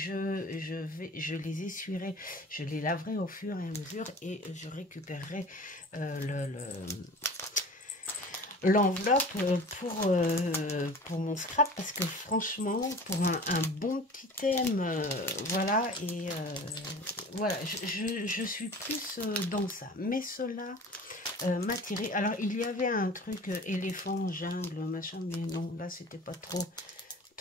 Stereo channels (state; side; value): normal; both; correlation 0.40